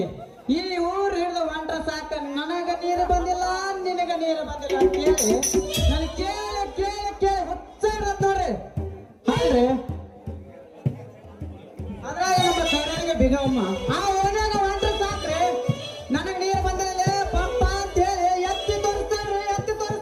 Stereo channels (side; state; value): both; identical; correlation 1.00